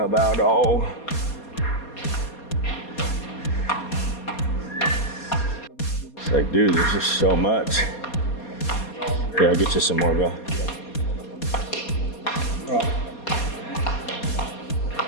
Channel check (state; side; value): late; right; 4.2 ms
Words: oh. It's like, dude, there's just so much. Yeah, I'll get you some more, bro.